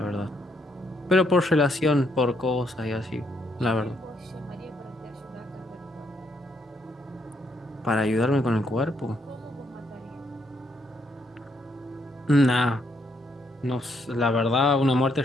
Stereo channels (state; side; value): normal; both; correlation 0.74